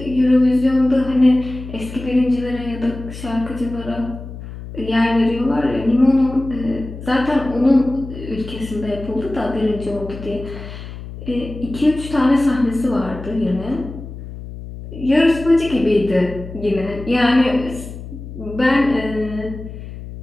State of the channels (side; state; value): left; noise; hum, 12 dB below the sound